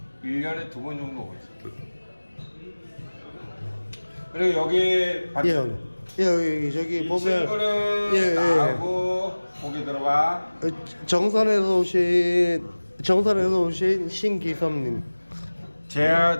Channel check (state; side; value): inverted; both; correlation -1.00